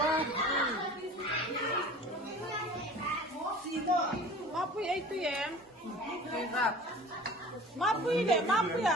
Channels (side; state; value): both; normal; correlation 0.42